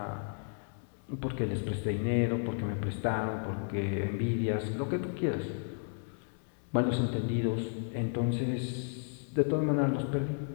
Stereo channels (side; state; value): right; silent; 56 dB below the other